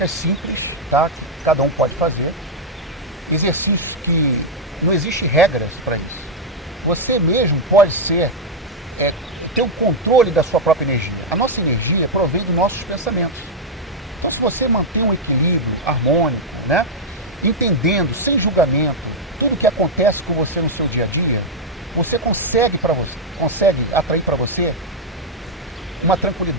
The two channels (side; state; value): both; normal; correlation -0.02